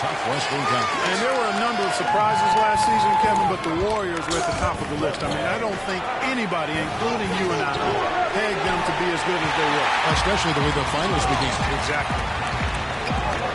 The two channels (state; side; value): identical; both; correlation 1.00